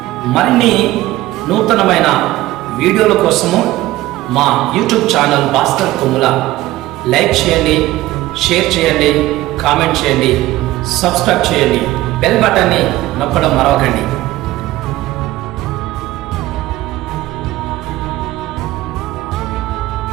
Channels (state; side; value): quieter; left; 16.8 dB